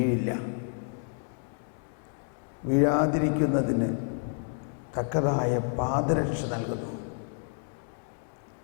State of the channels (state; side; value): silent; right; digital silence